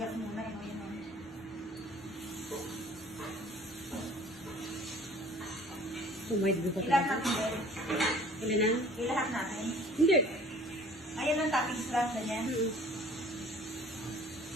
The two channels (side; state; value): both; normal; correlation 0.50